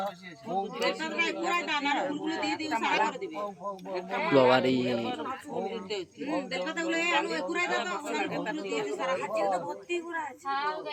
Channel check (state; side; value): identical; both; correlation 1.00